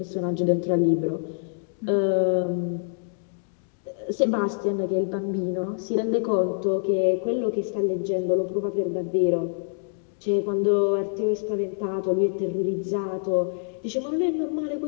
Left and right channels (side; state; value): right; silent; digital silence